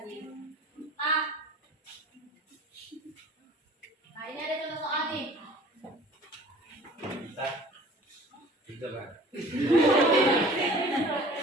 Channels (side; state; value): both; normal; correlation 0.46